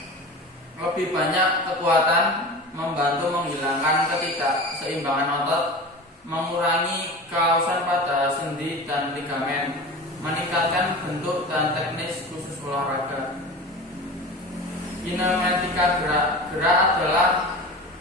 lebih banyak kekuatan, membantu menghilangkan ketidakseimbangan otot, mengurangi kausan pada sendi dan ligamen, meningkatkan bentuk dan teknis khusus olahraga. Kinematika gerak. Gerak adalah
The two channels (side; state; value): both; normal; correlation 0.32